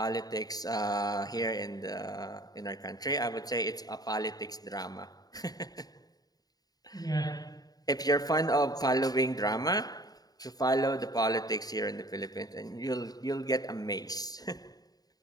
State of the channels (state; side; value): late; right; 0.18 ms